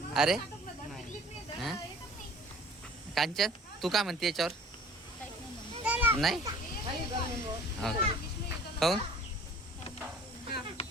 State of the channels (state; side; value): normal; both; correlation 0.49